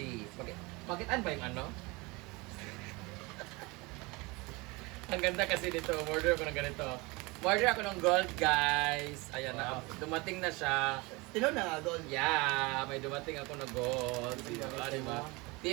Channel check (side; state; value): left; quieter; 25.0 dB